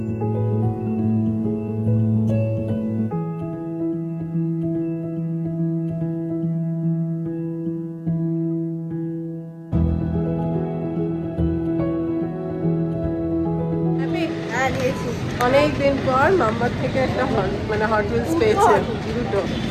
অনেকদিন পর মাম্মার থেকে একটা মানে হট হুইলস পেয়েছে দুটো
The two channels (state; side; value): identical; both; correlation 1.00